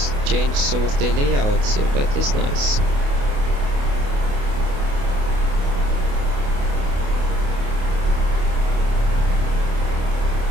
some of the layouts here. That is nice.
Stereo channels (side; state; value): left; late; 28 ms